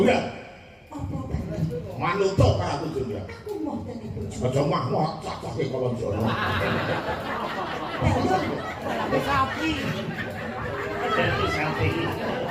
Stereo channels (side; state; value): both; identical; correlation 1.00